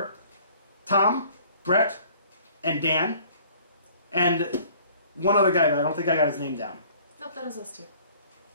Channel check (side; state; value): both; inverted; correlation -0.53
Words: Tom, Brett, and Dan, and one other guy, but I don't think I got his name down. Nope, that was us too.